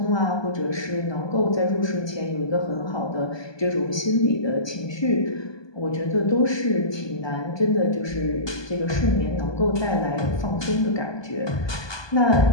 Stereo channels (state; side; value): late; right; 1.2 ms